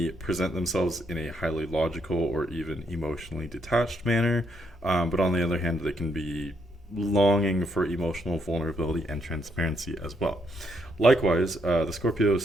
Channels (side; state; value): both; normal; correlation 0.75